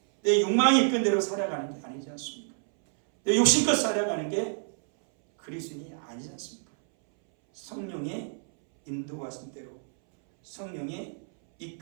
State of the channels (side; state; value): left; silent; 59 dB below the other